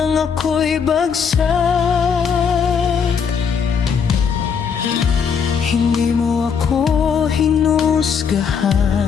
ako'y bagsak? Hindi mo ako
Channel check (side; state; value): right; quieter; 6.6 dB